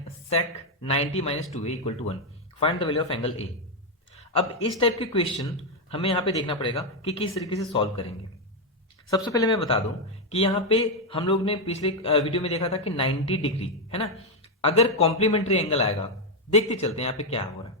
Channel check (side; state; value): both; normal; correlation 0.03